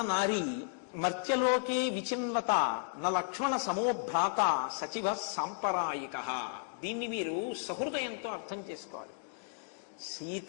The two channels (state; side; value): silent; right; digital silence